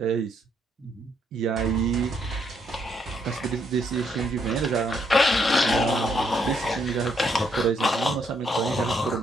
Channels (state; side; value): normal; both; correlation 0.73